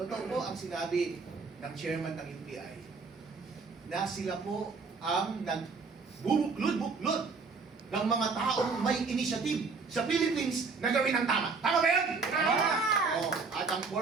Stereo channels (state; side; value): quieter; left; 4.6 dB